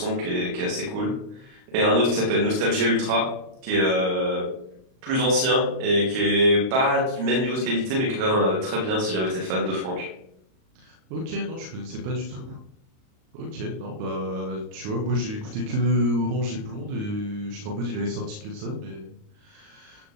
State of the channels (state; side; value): late; left; 38 ms